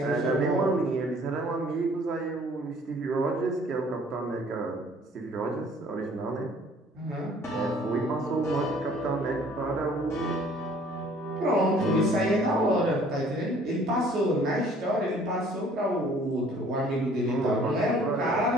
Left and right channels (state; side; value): normal; both; correlation 0.55